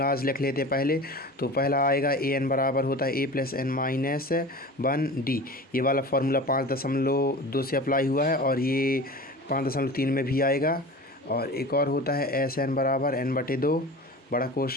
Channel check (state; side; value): normal; both; correlation 0.35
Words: लिख लेते हैं पहले। तो पहला आएगा ए एन बराबर होता है ए प्लस एन माइनस 1 डी। ये वाला फार्मूला 5.2 से अप्लाई हुआ है और ये 5.3 में भी आएगा। और एक और होता है एस एन बराबर एन बटे 2 बड़ा